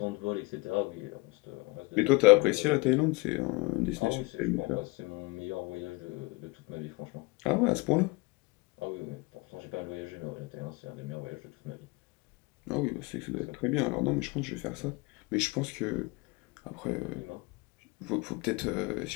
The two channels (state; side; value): quieter; right; 25.8 dB